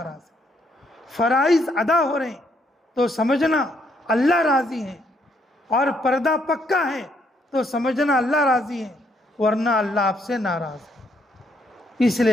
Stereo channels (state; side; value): normal; both; correlation 0.72